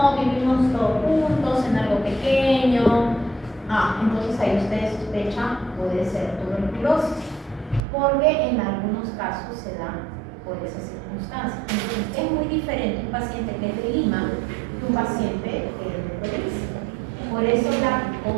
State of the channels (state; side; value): drops out; left; at 7.8 s